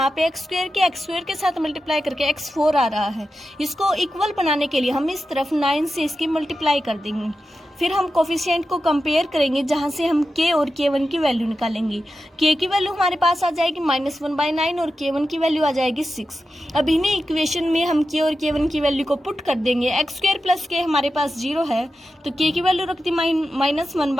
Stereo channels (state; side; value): normal; both; correlation 0.91